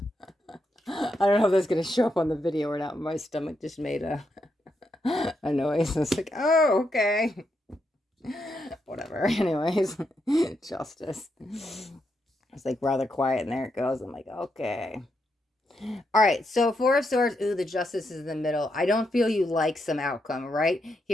I don't know if that's going to show up on the video or not. My stomach just made a noise. I was like, oh, okay. Whatever. Anyways, Justice. It's like rather quiet, and there it goes. I'm like, okay. All right, so Four of Swords, ooh, the Justice is in the middle. I don't feel you like some outcome, right?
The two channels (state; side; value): normal; both; correlation 0.82